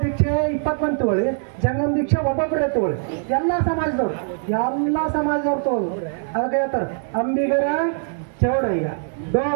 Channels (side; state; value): left; silent; digital silence